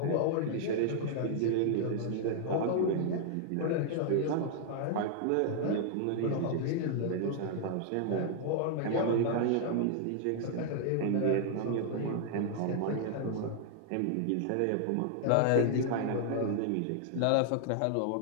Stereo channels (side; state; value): both; different; correlation -0.01